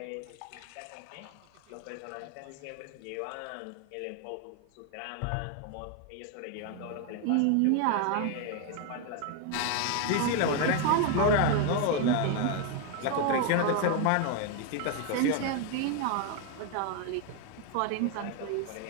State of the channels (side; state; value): both; different; correlation 0.01